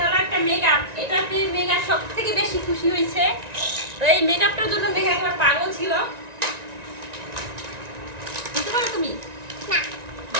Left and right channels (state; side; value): late; left; 1.9 ms